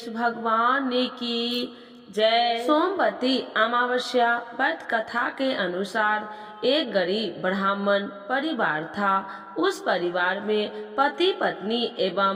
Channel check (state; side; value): identical; both; correlation 1.00